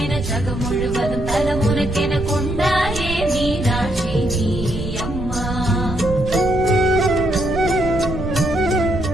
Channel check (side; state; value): right; noise; rumble, 8 dB below the sound